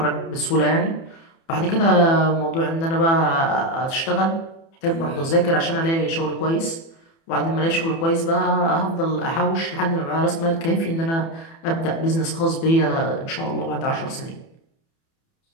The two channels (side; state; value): right; late; 30 ms